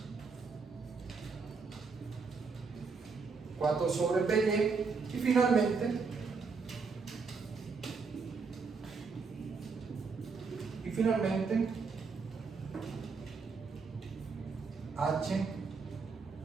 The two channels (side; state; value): left; quieter; 4.8 dB